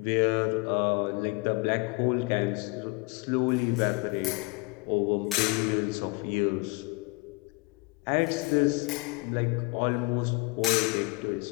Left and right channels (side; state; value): right; quieter; 26.2 dB